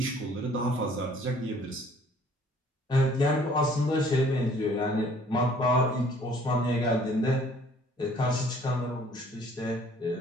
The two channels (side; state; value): both; normal; correlation 0.57